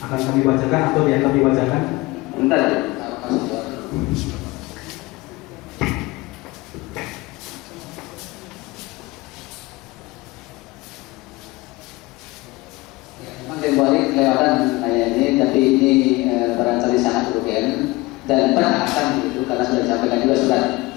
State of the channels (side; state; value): right; quieter; 21.6 dB